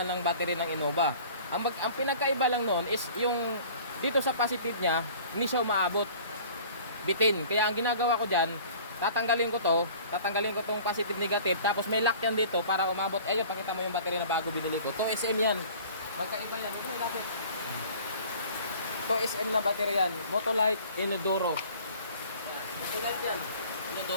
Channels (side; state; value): both; inverted; correlation -0.48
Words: ng battery ng Innova. Ang pinagkaiba lang noon is yung dito sa positive niya, hindi siya umaabot. Bitin. Kaya ang ginagawa ko diyan, tatanggalin ko tong positive negative, tapos may lock yan dito para umabot. Ayun, pakita mo yung battery na bago binili ko. 2SM yan. Magkaiba yan. Ito na natin. 2SM na battery yan. Motolite Inodoro. Motolite yan.